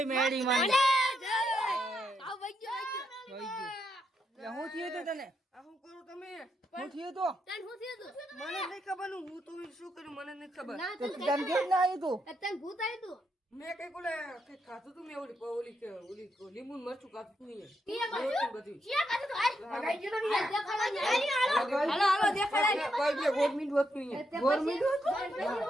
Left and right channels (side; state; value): both; normal; correlation 0.80